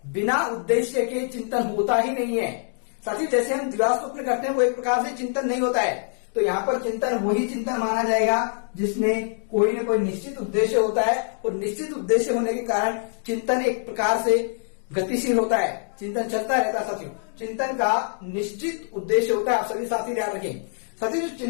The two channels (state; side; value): silent; right; digital silence